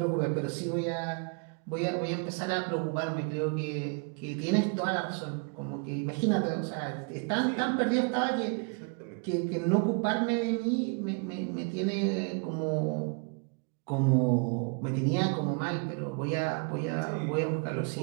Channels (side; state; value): left; quieter; 36.5 dB